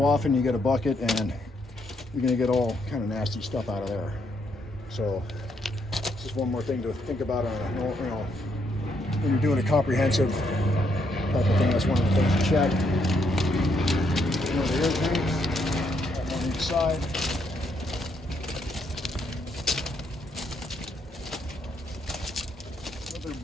often you get a bucket, and you're going to get all kind of nasty stuff out of there. So this is one more thing to think about on when you're doing a comprehensive type of thing. That's one of the things to check. The air tanks on each side. Other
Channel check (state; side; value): normal; both; correlation 0.75